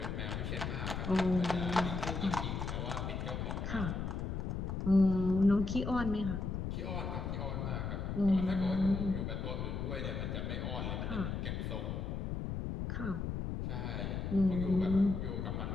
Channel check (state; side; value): noise; left; rumble, 3 dB below the sound